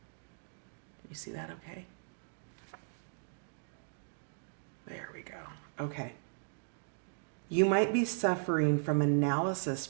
you see that okay? There we go. Okay. You might be suffering from analysis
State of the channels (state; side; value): silent; left; digital silence